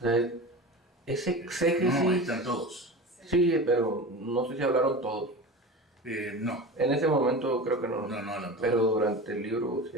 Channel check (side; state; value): both; normal; correlation 0.31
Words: sea, ese exégesis... No, están todos. Sí, pero no sé si hablaron todos. No, En ese momento creo que no, no hablan todos. pero durante el libro sí